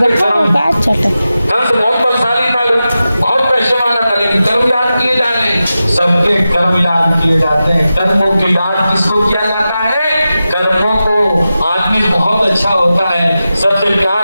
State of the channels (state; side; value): inverted; both; correlation -0.92